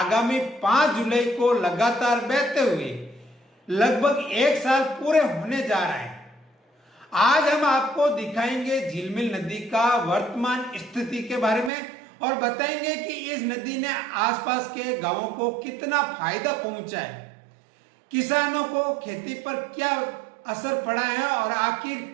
5 जुलाई को लगातार बहते हुए लगभग 1 साल पूरे होने जा रहा है। आज हम आपको दिखाएंगे झिलमिल नदी का वर्तमान स्थिति के बारे में और बताएंगे कि इस नदी ने आसपास के गांवों को कितना फायदा पहुंचा है, किसानों को खेती पर क्या असर पड़ा है और आखिर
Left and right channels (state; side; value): drops out; left; at 11.7 s